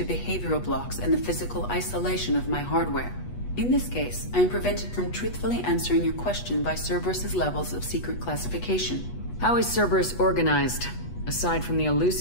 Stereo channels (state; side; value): late; right; 8.2 ms